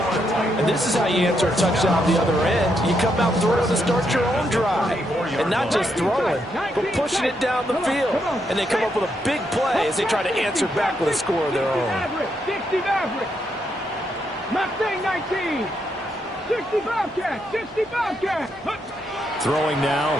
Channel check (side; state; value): both; normal; correlation 0.79